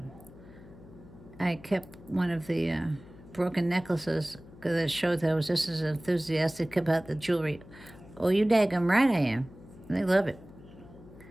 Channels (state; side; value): noise; left; hum, 20 dB below the sound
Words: I kept one of the broken necklaces because it showed that I was just as enthusiastic about the jewelry. Oh, you daggum right I am. They love it.